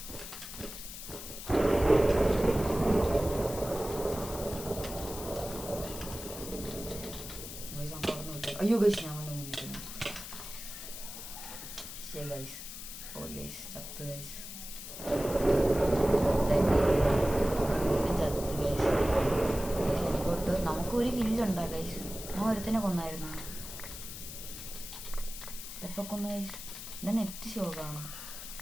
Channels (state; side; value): noise; left; hiss, 10 dB below the sound